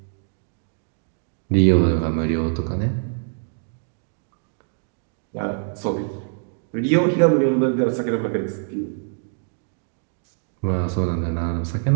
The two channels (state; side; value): silent; left; digital silence